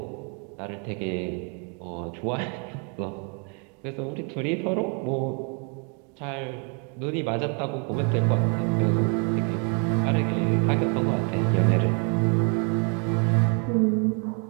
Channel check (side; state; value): left; quieter; 37.3 dB